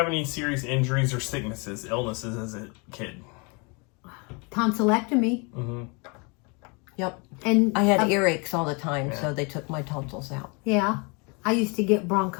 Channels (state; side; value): quieter; right; 31.4 dB